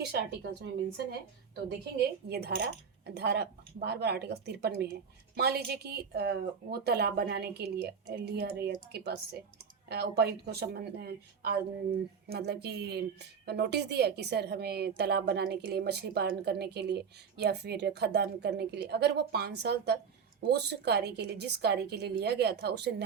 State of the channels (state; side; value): quieter; left; 6.5 dB